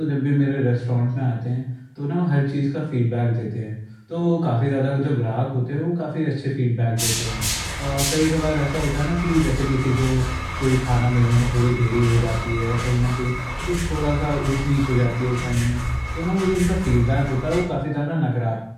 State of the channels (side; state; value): both; identical; correlation 1.00